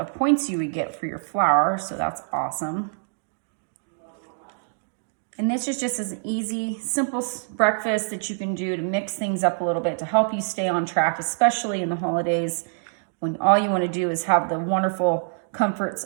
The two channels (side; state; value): left; silent; digital silence